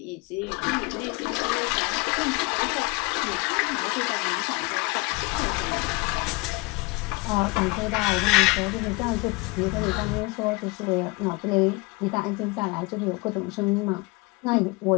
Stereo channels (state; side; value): quieter; right; 25.3 dB